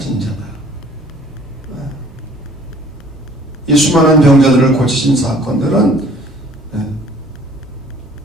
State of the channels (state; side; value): normal; both; correlation 0.54